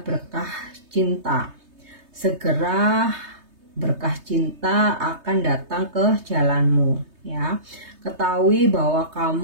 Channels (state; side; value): late; left; 3.2 ms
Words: berkah cinta. Segera berkah cinta akan datang ke jalanmu ya. Ketahui bahwa